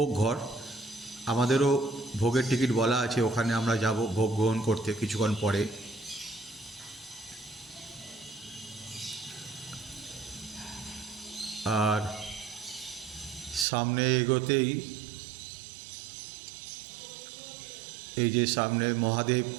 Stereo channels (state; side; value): drops out; left; at 13.7 s